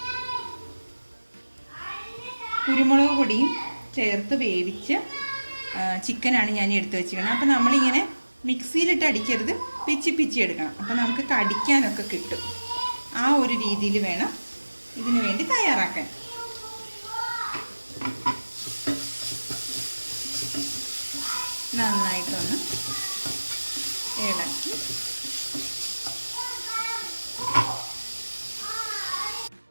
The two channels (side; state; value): both; inverted; correlation -1.00